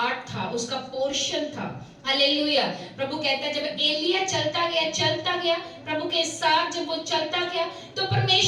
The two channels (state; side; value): identical; both; correlation 1.00